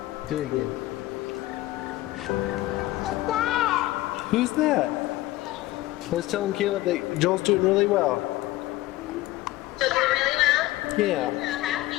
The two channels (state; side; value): quieter; right; 17.3 dB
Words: Do it again. Who's that? I was telling Caleb that Joel's doing really well. Yeah.